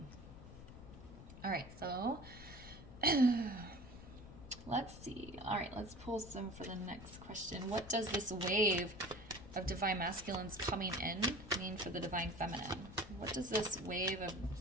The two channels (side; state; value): left; noise; rumble, 15 dB below the sound